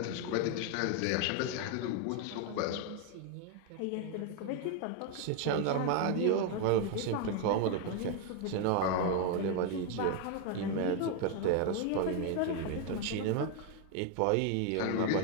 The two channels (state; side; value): different; both; correlation 0.01